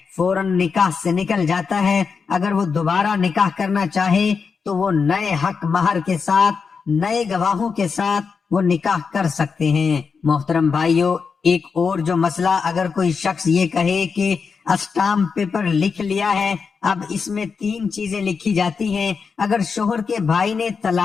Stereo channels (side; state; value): right; quieter; 5.5 dB